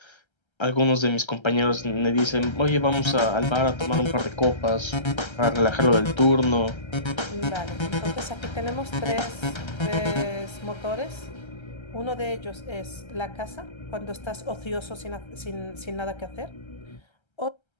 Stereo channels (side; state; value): right; late; 1.3 ms